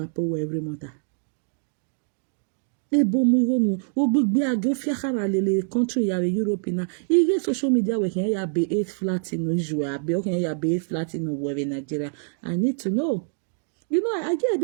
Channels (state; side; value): silent; left; digital silence